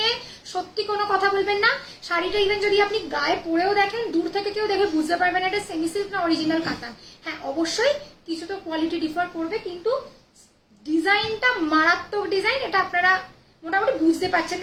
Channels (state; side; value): identical; both; correlation 1.00